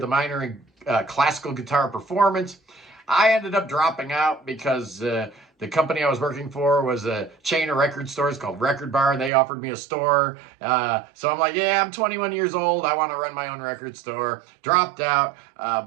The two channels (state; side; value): drops out; left; at 9.3 s